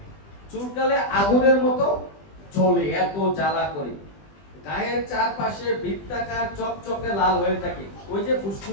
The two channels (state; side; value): late; right; 20 ms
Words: চুলকালে আগুনের মতো জ্বলে, এত জ্বালা করে। গায়ের চারপাশে বৃত্তাকার চকচকে লাল হয়ে থাকে। ওই যে